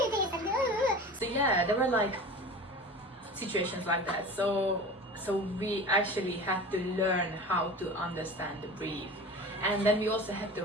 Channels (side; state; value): both; normal; correlation 0.36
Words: this, and So yeah, there were like situations like that. So we actually had to learn how to understand the brief, and then we also had to